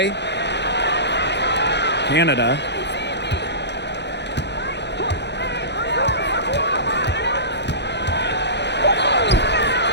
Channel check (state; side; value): late; right; 0.50 ms